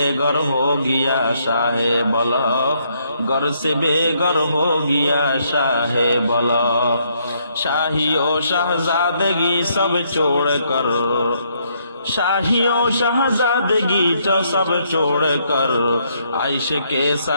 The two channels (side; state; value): both; inverted; correlation -0.72